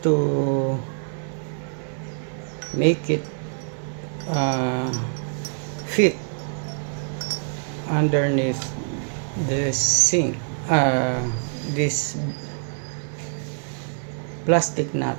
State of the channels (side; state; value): left; silent; digital silence